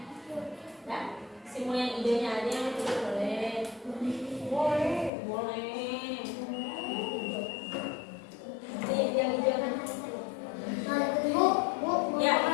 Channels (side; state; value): right; drops out; at 5.1 s